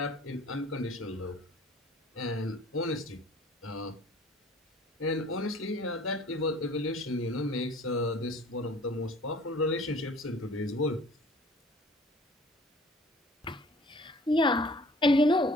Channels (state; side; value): normal; both; correlation 0.50